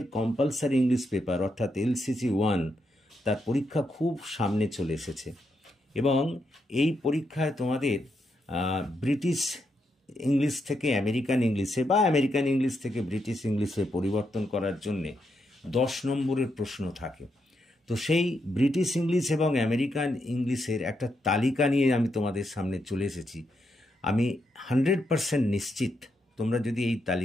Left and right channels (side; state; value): both; normal; correlation 0.81